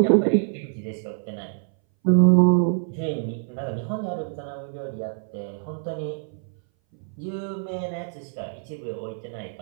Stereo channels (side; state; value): left; silent; 59 dB below the other